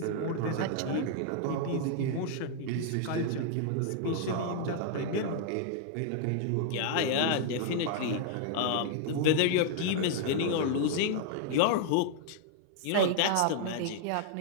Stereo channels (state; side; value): different; both; correlation -0.01